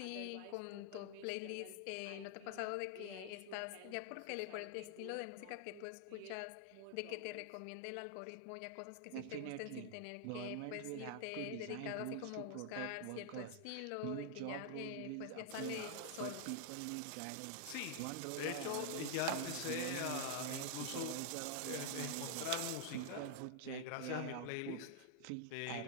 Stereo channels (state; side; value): different; both; correlation 0.00